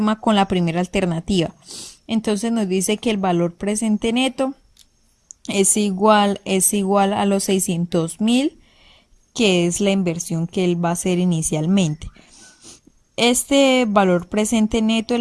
con la primera alternativa. Entonces nos dice que el valor presente neto es igual a los 600.000, que es la inversión que él va a hacer inicialmente. Este valor presente neto de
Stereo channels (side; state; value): both; identical; correlation 1.00